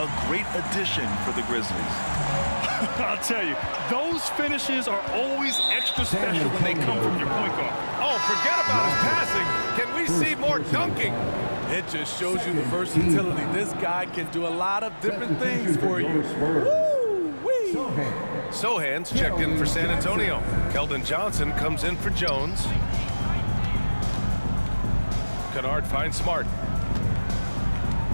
A great addition for the Grizzlies. I'll tell you, those finishes are always extra special when they come from your point guard. Oh, forget about his passing. Can we see more dunking? It just shows you the versatility. This guy can do a lot of different things for you. Woo-wee. Sohan's checked in for San Antonio. Keldon Johnson comes in for Jones. Kennard finds Smart.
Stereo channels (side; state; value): both; inverted; correlation -1.00